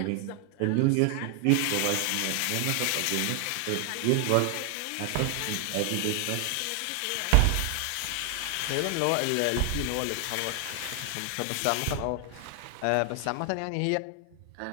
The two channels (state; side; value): different; both; correlation 0.00